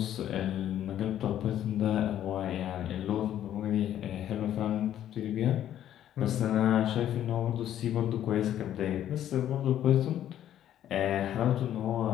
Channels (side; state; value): right; quieter; 11.3 dB